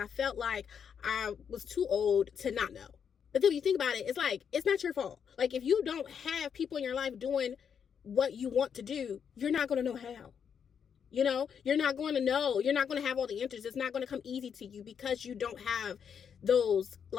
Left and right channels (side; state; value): right; quieter; 7.4 dB